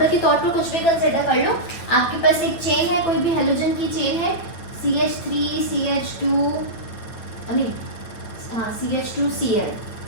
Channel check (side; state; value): right; late; 9.0 ms